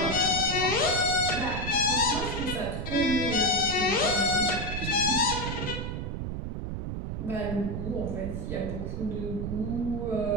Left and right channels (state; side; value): noise; right; rumble, 4 dB below the sound